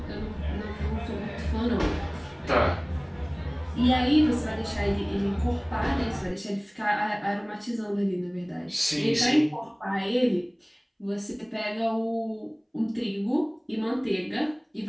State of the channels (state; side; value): identical; both; correlation 1.00